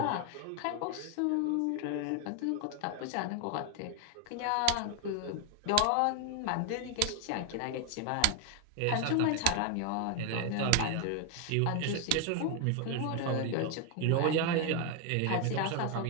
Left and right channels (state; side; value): different; both; correlation 0.01